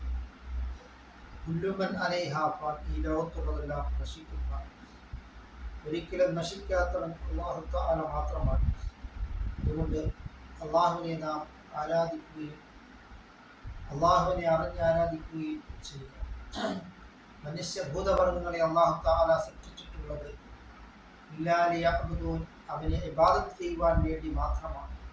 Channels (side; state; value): both; identical; correlation 1.00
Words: كل من عليها فان ഈ ലോകത്തുള്ളതെല്ലാം നശിക്കുന്ന ഒരിക്കലും നശിക്കാത്തവൻ അല്ലാഹു തആല മാത്രമാണ്. അതുകൊണ്ട് അള്ളാഹുവിനെ നാം ആരാധിക്കുകയും അള്ളാഹുവിനെ അറിഞ്ഞ് ആരാധിക്കുകയും ചെയ്യുക. മനുഷ്യഭൂതവർഗങ്ങളെ അല്ലാഹു തആല സൃഷ്ടിച്ചിട്ടുള്ളത് ഇല്ലാ ലിയഅ്ബുദൂൻ, അവനെ ഇബാദത്ത് ചെയ്യുവാൻ വേണ്ടി മാത്രമാണ്,